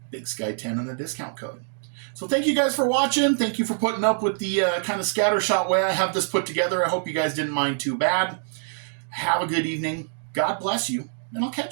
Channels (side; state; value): left; silent; digital silence